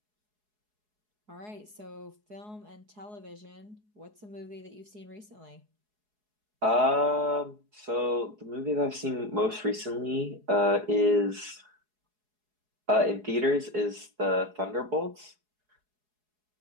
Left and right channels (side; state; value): left; late; 4.7 ms